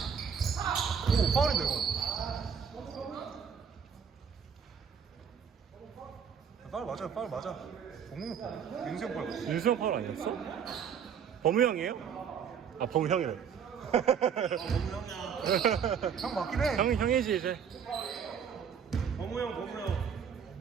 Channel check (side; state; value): left; quieter; 7.4 dB